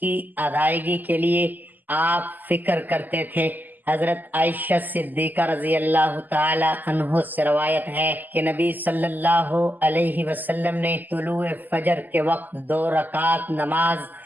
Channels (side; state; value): left; late; 0.085 ms